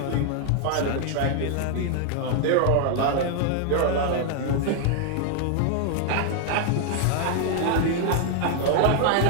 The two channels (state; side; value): different; both; correlation 0.00